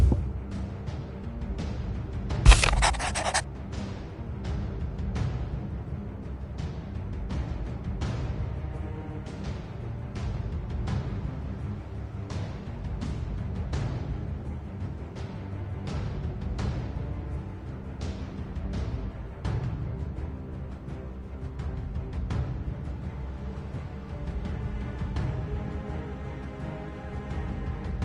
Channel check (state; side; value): identical; both; correlation 1.00